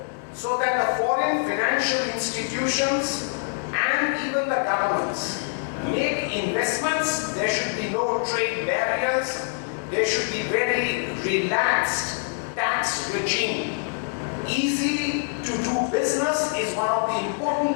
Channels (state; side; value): silent; right; digital silence